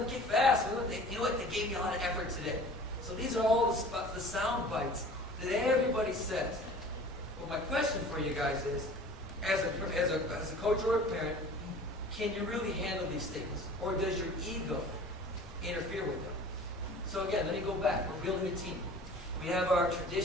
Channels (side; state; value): both; normal; correlation 0.44